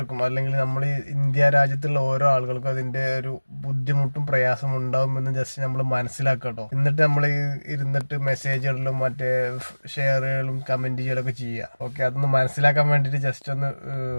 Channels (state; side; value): inverted; both; correlation -1.00